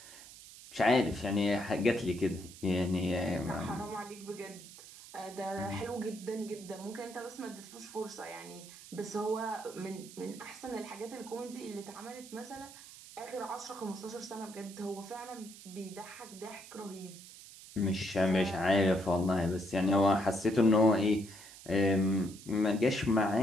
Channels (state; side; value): noise; right; hiss, 17 dB below the sound